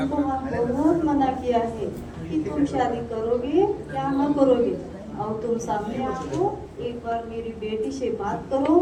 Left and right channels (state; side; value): identical; both; correlation 1.00